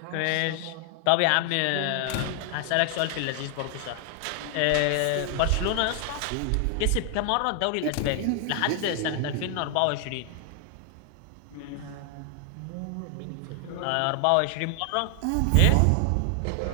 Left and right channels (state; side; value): different; both; correlation 0.00